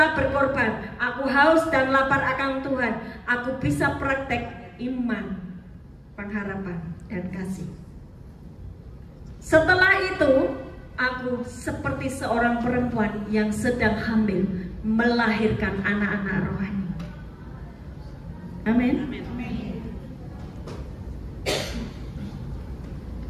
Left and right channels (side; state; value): both; identical; correlation 1.00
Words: berkorban. Aku haus dan lapar akan Tuhan. Aku bisa praktek iman, pengharapan, dan kasih. Setelah itu, aku seperti seorang perempuan yang sedang hamil melahirkan anak-anak rohani. Amin.